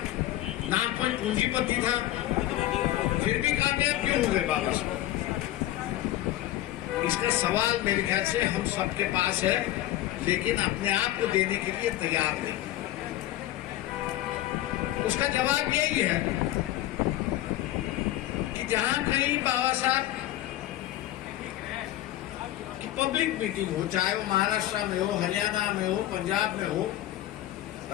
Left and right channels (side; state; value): right; quieter; 14.5 dB